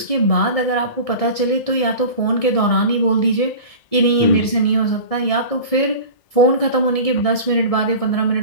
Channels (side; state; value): right; late; 1.7 ms